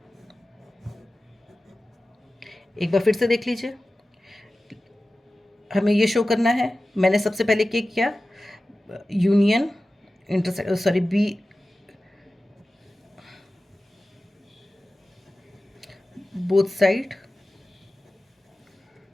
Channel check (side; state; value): both; normal; correlation 0.95